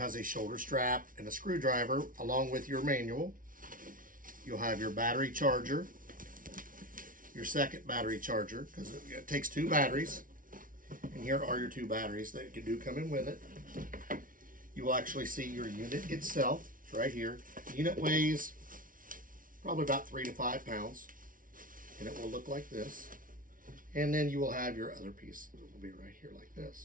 a shoulder strap and a screwdriver along with your manual. You'll have your battery charger, your second battery charger, because it takes two batteries. And here are your two batteries that do come in with it. You will actually see your unit itself. It's right here. The unit weighs probably about 3 to 5 pounds, and it will look like this. And then you will have your other piece. It will be right here like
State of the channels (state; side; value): late; left; 0.39 ms